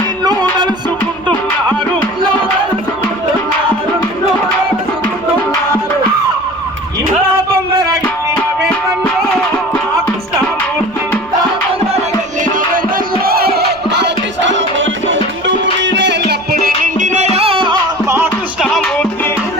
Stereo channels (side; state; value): right; noise; rumble, 26 dB below the sound